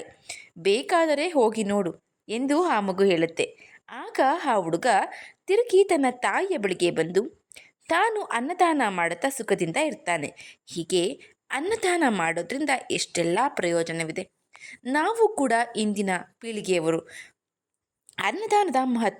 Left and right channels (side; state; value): both; identical; correlation 1.00